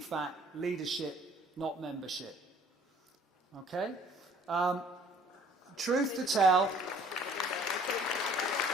leadership, not membership. Okay? Truth to tell,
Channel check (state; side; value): normal; both; correlation 0.55